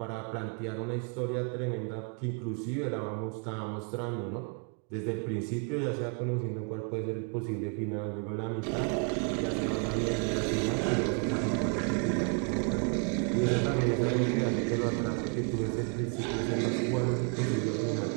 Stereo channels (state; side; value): quieter; left; 39.2 dB